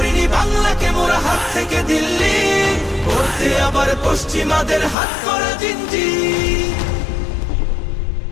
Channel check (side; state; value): right; drops out; at 5.0 s